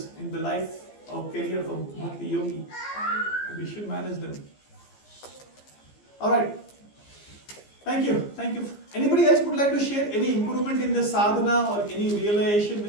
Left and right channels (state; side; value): late; right; 15 ms